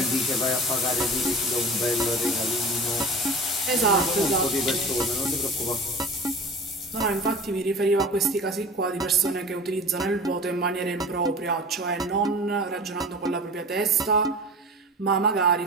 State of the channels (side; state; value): both; normal; correlation 0.36